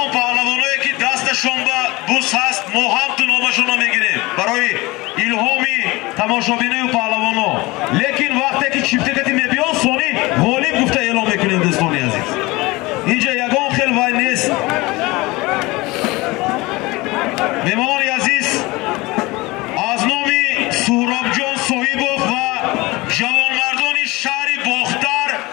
pahlavonoi ki dastashon ba bus hast mo ham tu nomashona megirem baroyi ilhomi tamoshabinoyu pahlavono. Lekin vaqti ki chiftekati mebiyon soni g'olib gufta e'lon mekunем do'stoni aziz. Inja yagon xil vay nest. Mehmoni aziz, az nomi Suhrobjon Sohibov va javonmardoni shahri Boxtar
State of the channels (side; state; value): right; quieter; 22.1 dB